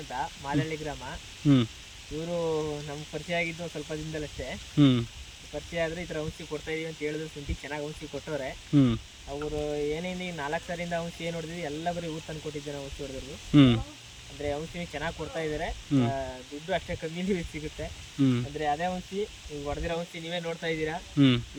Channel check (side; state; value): both; identical; correlation 1.00